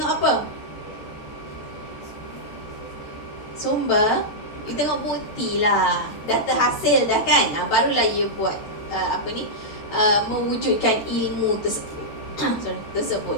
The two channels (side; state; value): right; late; 13 ms